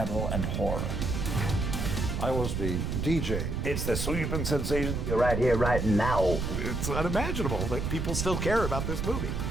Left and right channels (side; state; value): right; noise; rumble, 1 dB below the sound